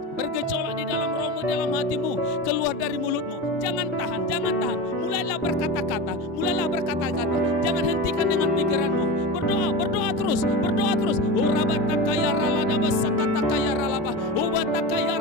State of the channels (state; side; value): normal; both; correlation 0.25